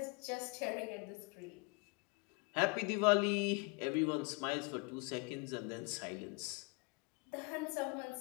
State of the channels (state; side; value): quieter; right; 30.2 dB